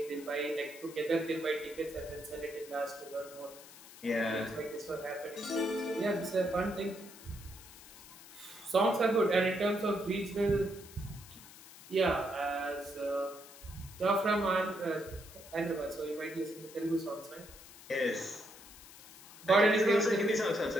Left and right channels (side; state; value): left; noise; hiss, 18 dB below the sound